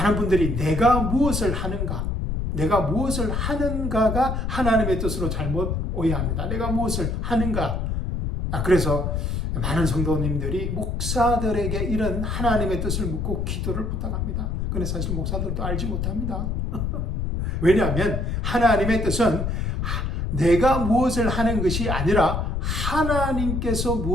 분들이 내가 무엇을 하는가가 하나님의 뜻으로 잘못 오해합니다. 내가 무엇을 하는가. 그래서 많은 성도님들이 목사들에게 이런 하나님의 뜻을 묻고 기도를 부탁합니다. 그런데 사실 목사들도 알지 못합니다. 왜냐하면 하나님의 뜻은 내가 무엇을 하는 것이 아니라 하나님께서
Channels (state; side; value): noise; left; rumble, 1 dB below the sound